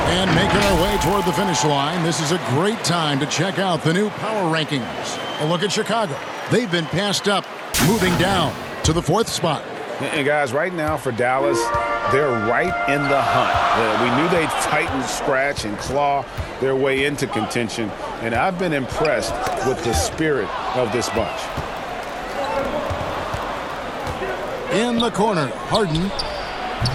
making our way toward the finish line, this is a great time to check out the new power rankings. A look at Chicago. They've been passed up, moving down to the 4th spot. And guys, right now for Dallas, they're right in the hunt. We knew they'd fight and scratch and claw their way into contention, and I've been impressed with the spirit of this bunch. In the corner, Harden.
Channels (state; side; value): identical; both; correlation 1.00